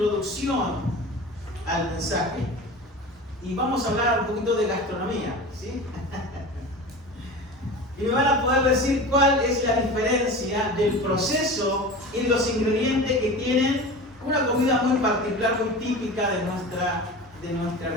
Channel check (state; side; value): normal; both; correlation 0.33